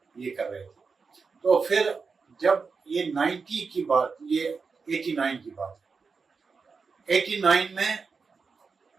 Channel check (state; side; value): quieter; left; 5.0 dB